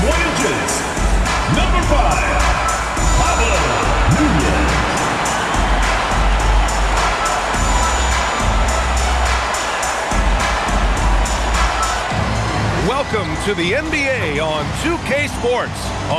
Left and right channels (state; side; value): identical; both; correlation 1.00